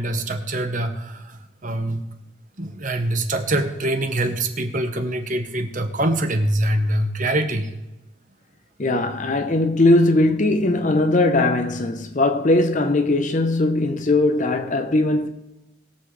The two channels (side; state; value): both; normal; correlation 0.57